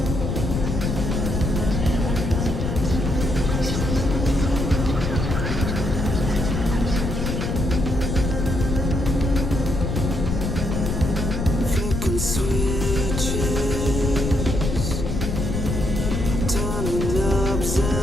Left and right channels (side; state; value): left; noise; rumble, 2 dB below the sound